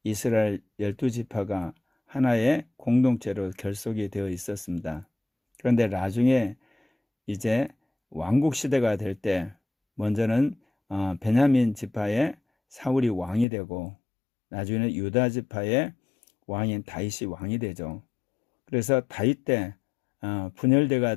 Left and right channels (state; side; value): drops out; right; at 13.5 s